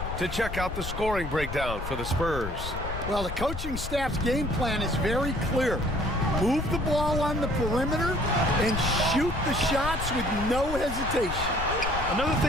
to check out the scoring breakdown for the Spurs. Well, the coaching staff's game plan is very clear. Move the ball on the perimeter and shoot the shots with no hesitation. Another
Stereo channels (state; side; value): noise; left; rumble, 6 dB below the sound